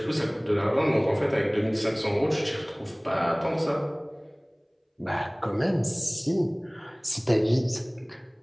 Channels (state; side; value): identical; both; correlation 1.00